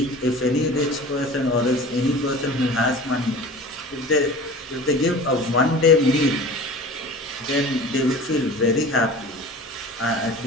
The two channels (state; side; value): normal; both; correlation 0.39